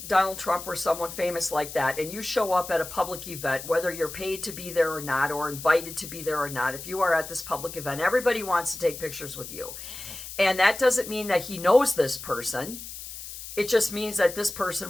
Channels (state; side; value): noise; left; hiss, 11 dB below the sound